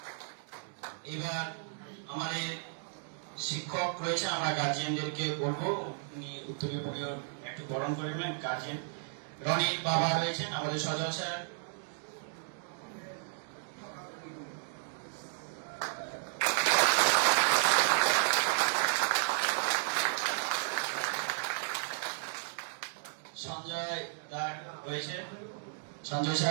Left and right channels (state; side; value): silent; left; digital silence